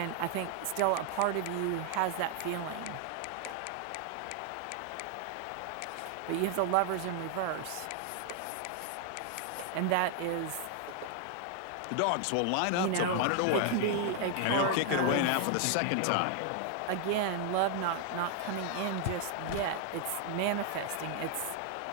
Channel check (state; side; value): different; both; correlation 0.00